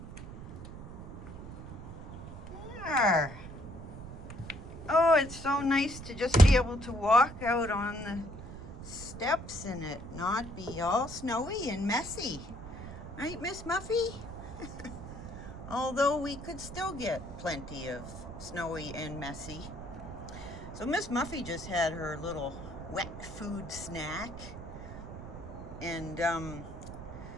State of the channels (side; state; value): right; noise; rumble, 11 dB below the sound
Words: There. Oh, it's so nice to just be able to walk out on the steps and it not be all snowy and messy. Right, Miss Muffy? Although we could still get plenty of snowy and messy. So Miss Muffy just had her little wet food snack. And,